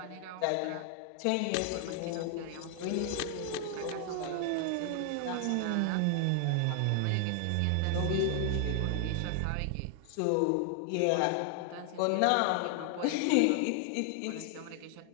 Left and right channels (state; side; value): different; both; correlation 0.00